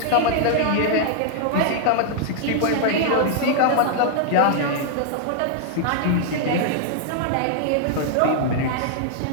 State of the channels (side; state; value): both; different; correlation -0.01